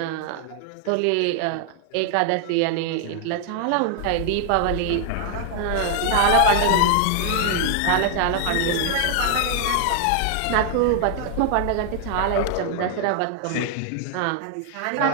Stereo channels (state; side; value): different; both; correlation 0.00